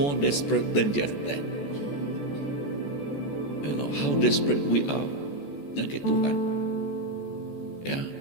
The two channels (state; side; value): late; right; 14 ms